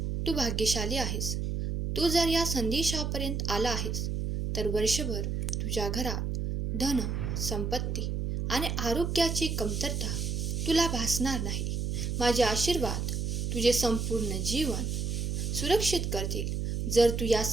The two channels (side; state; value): right; noise; hum, 1 dB below the sound